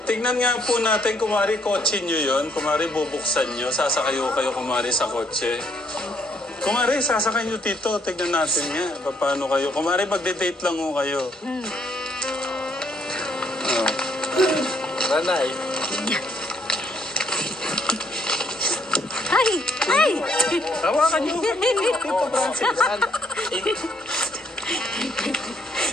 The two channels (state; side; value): normal; both; correlation 0.70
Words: tignan nga po natin, kumari, kotse nyo yun. Kumari, bubuksan nyo. Sasakayo kayo, kumari, sa kotse. Kumari, sasakay nyo, Tito. Tignan natin nga. Paano kayo? Kumari, magde-date lang ho kayo. Ranay. Ay! Ay! Tawakan nyo. Tito Francis.